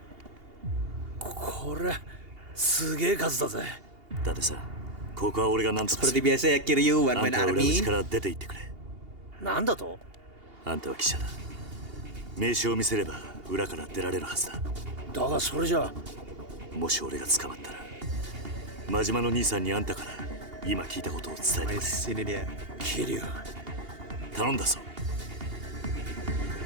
これすげえ数だぜ。伊達さん、ここは俺が何とかす Seperti る。 biasa ya Kiryu あ One ん Man たは裏口 Army. から出て行ってくれ。なんだと？あんたは記者だ。名刺を見せれば裏から出られるはずだ。だがそれじゃ。もし俺が捕まったら、真島の兄さんにあんたから今聞いたことを伝えてくれ。 Wes, ini dia. 桐生。頼んだぞ。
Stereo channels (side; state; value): left; late; 2.8 ms